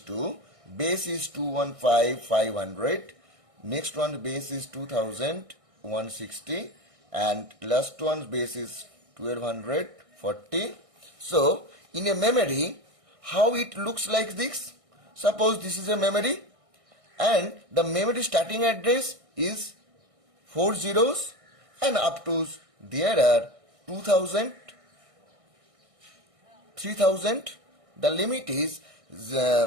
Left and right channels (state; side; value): late; left; 1.6 ms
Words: base is 215,500, next one base is 2,160, and last one base is 1,240. So, in a memory, how it looks like this? Suppose this is a memory, and the memory starting address is 4 zeros, and up to there are 2,000, 3,000. The limit is